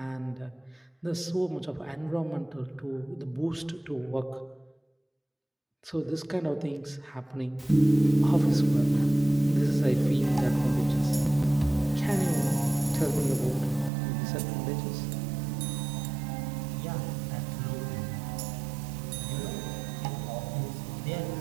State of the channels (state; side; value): drops out; left; at 13.9 s